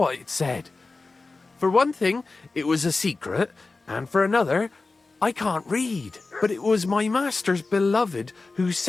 it said. For one thing, it was a secret, and for another, I can't read. But it was my master's beloved who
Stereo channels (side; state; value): right; quieter; 3.7 dB